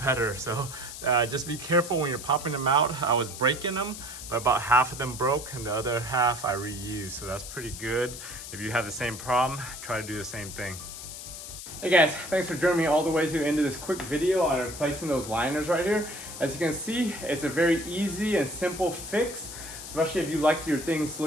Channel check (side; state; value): left; noise; hiss, 11 dB below the sound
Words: So just be careful when you're popping them out. I was breaking them, but about half of them broke and the other half I reused. So that's pretty good. If you have the same problem, try to do the same thing. Hey guys, thanks for joining me all the way to the end of this quick video on replacing those liners right here. As you can see, it's a very easy and simple fix, especially if you like your things